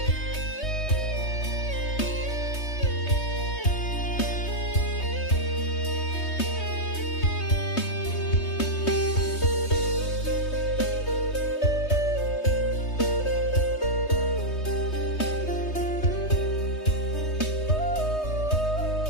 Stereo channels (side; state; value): right; late; 3.2 ms